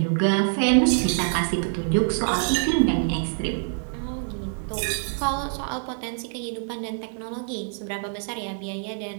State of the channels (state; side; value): silent; left; 61 dB below the other